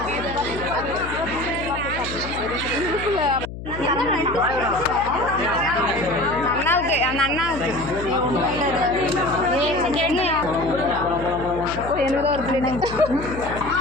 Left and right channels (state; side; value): noise; left; hum, 10 dB below the sound